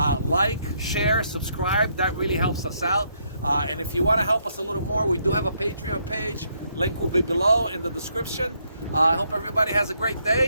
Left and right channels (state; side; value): inverted; both; correlation -0.74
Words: Like, share, subscribe. That really helps us out. And if you want to help us a little more, we do have a Patreon page. Link will be below in the description. I hope everybody has a great